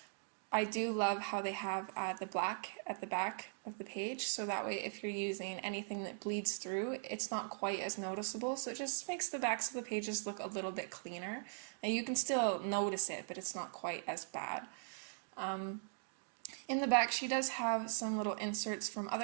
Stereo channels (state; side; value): silent; left; digital silence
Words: I do love how they have the black at the back of the page, so that way if you're using anything that bleeds through, it's not quite as noticeable, so it just makes the backs of the pages look a little bit cleaner. And you can still notice it, but it's not quite as bad. In the back, she does have some little inserts from